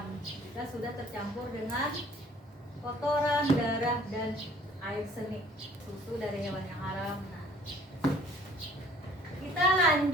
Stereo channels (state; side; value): normal; both; correlation 0.55